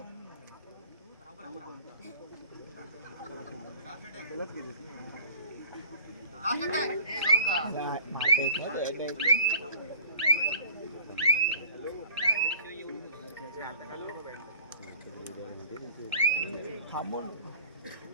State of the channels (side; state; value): both; inverted; correlation -0.46